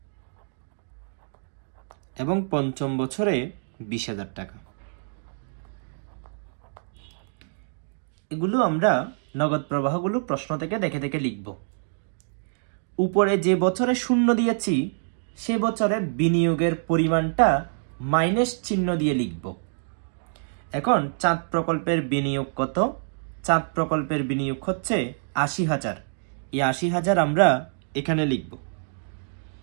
এবং পঞ্চম বছরে 20,000 টাকা। এগুলো আমরা নগদ প্রবাহগুলো প্রশ্ন থেকে দেখে দেখে লিখব। উপরে যে বছরে 0 দিয়েছি সে বছরে বিনিয়োগের পরিমাণটা মাইনাস চিহ্ন দিয়ে লিখব। এখন চাঁদ প্রকল্পের বিনিয়োগ কত? চাঁদ প্রকল্পের বিনিয়োগ হচ্ছে 80,000। এই 80,000 আমরা এখানে লিখব,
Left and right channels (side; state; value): left; silent; digital silence